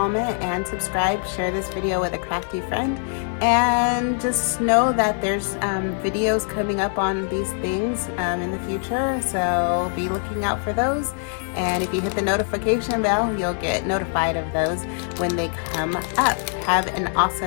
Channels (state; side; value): silent; right; 60 dB below the other